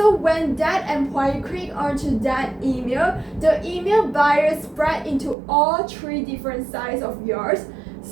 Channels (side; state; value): left; drops out; at 5.4 s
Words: when that employee click onto that email, the email virus spread into all 3 different sites of yours.